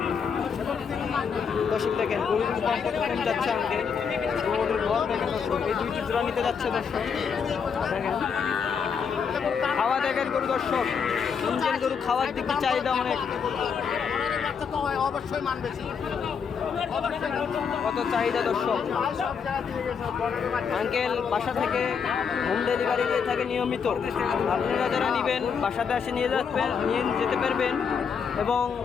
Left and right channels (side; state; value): right; quieter; 6.4 dB